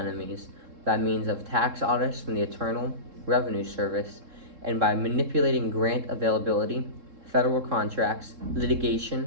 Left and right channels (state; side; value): late; left; 3.7 ms